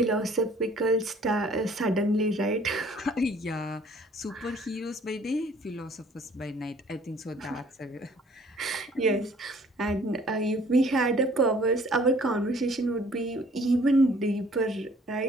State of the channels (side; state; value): both; normal; correlation 0.56